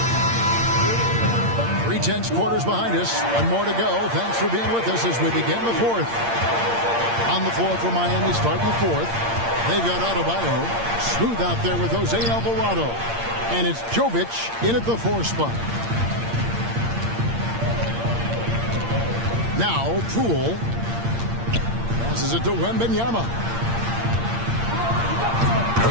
3 quarters behind us. 1 more to go. Thanks for being with us as we begin the 4th. On the floor for Miami starting the 4th. They've got Adebayo. Smooth out there with Jose Alvarado. And it's Jovic in at the 4 spot. Now, Poole passes it to Wembanyama.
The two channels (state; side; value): late; left; 8.7 ms